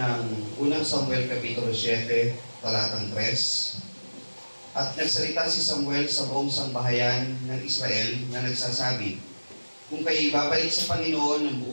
unang Samuel Kapitulo 7, talatang 3. At nagsalita si Samuel sa buong sambahayan ng Israel na nagsasabi, kung kayo babalik sa Panginoon ng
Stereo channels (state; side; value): inverted; both; correlation -1.00